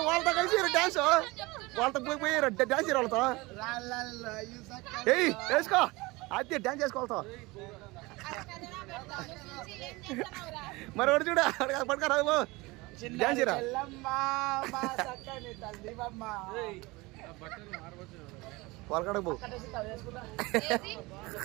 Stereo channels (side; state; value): left; quieter; 22.9 dB